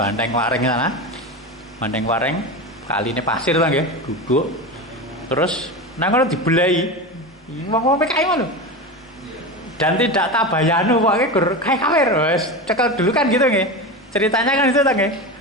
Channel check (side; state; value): both; normal; correlation 0.23